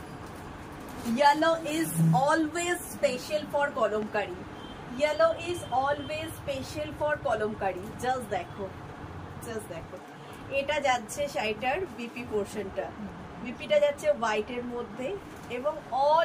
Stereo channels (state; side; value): identical; both; correlation 1.00